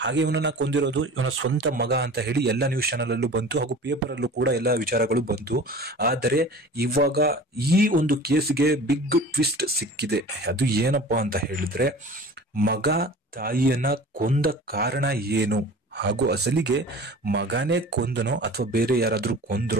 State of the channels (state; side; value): normal; both; correlation 0.40